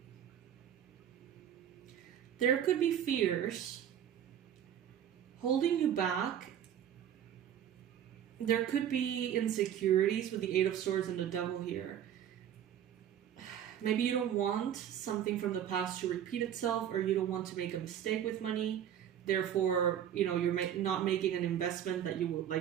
There could be fears holding you back. There could be insecurities with the Eight of Swords and the Devil here. Maybe you don't want something from the past to repeat itself, or you don't want to make a mistake with money. Therefore, you know, you're not making an investment that you would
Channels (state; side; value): quieter; left; 9.9 dB